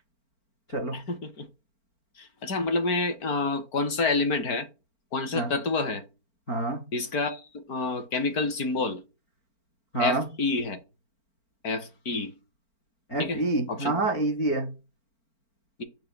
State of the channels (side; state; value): right; late; 4.4 ms